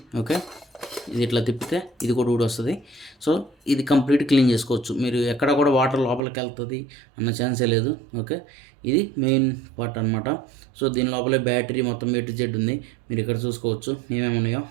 ఓకే, ఇది ఇట్లా తిప్పితే ఇది కూడా ఊడి వస్తుంది. సో ఇది కంప్లీట్ క్లీన్ చేసుకోవచ్చు మీరు. ఎక్కడ కూడా వాటర్ లోపలికి వెళ్తుంది అన్న ఛాన్సే లేదు. ఓకే, ఇది మెయిన్ పార్ట్ అనమాట. సో దీని లోపలే బ్యాటరీ మొత్తం A to Z ఉంది, మీరు ఇక్కడ చూసుకోవచ్చు ఏమేమి ఉన్నాయో.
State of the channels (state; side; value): drops out; left; at 6.2 s